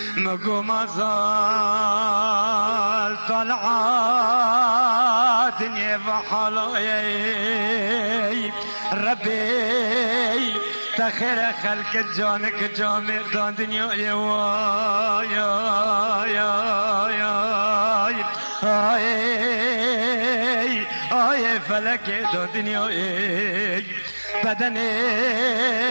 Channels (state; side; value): inverted; both; correlation -1.00